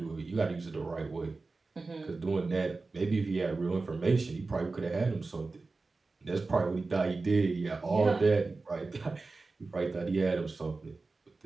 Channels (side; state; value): left; quieter; 3.7 dB